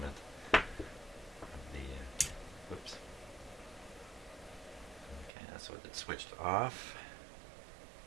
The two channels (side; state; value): left; drops out; at 5.3 s